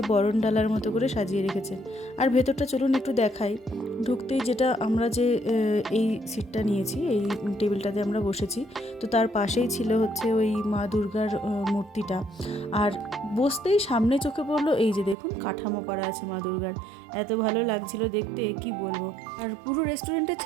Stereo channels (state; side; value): drops out; left; at 15.2 s